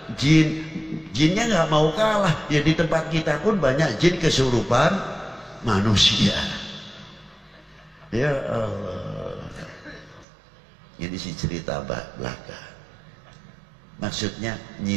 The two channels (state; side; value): drops out; left; at 10.2 s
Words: jin, jinnya nggak mau kalah. Ya di tempat kita pun banyak jin kesurupan manusia. Ya Allah. Ini sih cerita belaka. Maksudnya